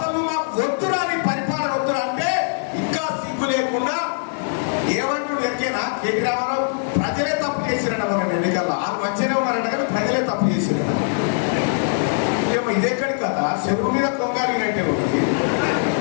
నువ్వు మాకు వద్దురా, నీ పరిపాలన వద్దురా అంటే ఇంకా సిగ్గు లేకుండా ఏమంటుడు ఎక్కేనా కేటీ రామారావు? ప్రజలే తప్పు చేసిరట మన ఎన్నికల్లో. వాళ్ళు మంచిగానే ఉన్నారట కానీ ప్రజలే తప్పు చేసిరట. ఏమో ఇదెక్కడి కదా, చెరువు మీద కొంగాలినట్టే ఒకటి.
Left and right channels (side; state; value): right; silent; digital silence